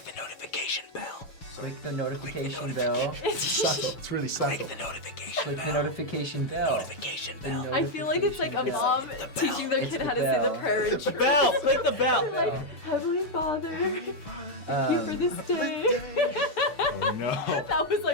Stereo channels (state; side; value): late; right; 6.8 ms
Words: the notification bell. Click the notification bell. Subtle. It's really subtle. notification Click the notification bell. I feel like it's like a mom teaching their It's kid the how to say the bell. prayer. in church. Bell. Click the bell. Like, Heavenly Father, thank you for this day. Oh no. That was